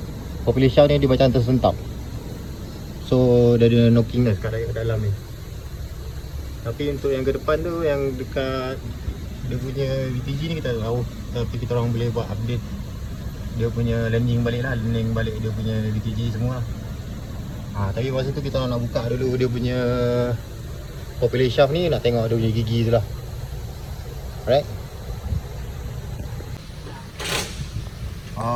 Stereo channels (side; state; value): both; identical; correlation 1.00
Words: popular shaft ni dia macam tersentap. So dia ada knocking dah kat dalam ni. Tapi untuk yang ke depan tu, yang dekat dia punya VTG ni kita tak tahu, tapi kita orang boleh buat update dia punya landing balik lah, landing balik dia punya VTG semua lah. Tapi masa tu kita nak buka dulu dia punya popular shaft ni, nak tengok dia punya gigi tu lah. Alright.